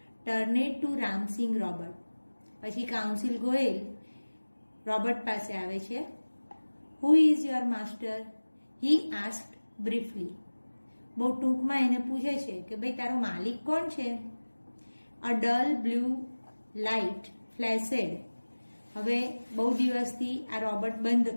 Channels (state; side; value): inverted; both; correlation -1.00